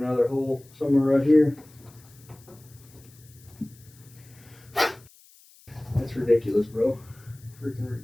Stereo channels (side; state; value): left; noise; hiss, 26 dB below the sound